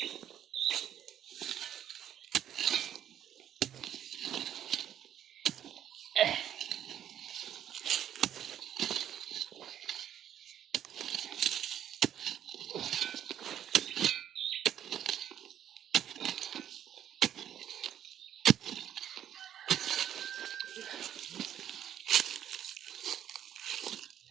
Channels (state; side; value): quieter; left; 10.4 dB